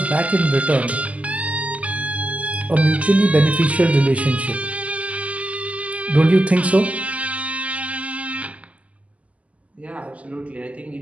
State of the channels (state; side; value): late; left; 0.068 ms